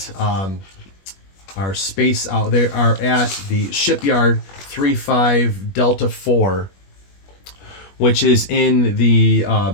our space out. They are at the shipyard 35 Delta 4, which is in the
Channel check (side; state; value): right; late; 21 ms